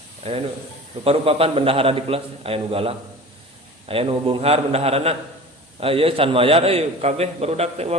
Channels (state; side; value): normal; both; correlation 0.38